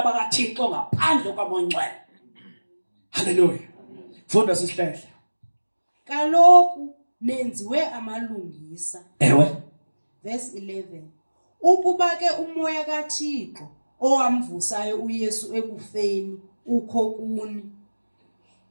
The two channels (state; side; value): inverted; both; correlation -1.00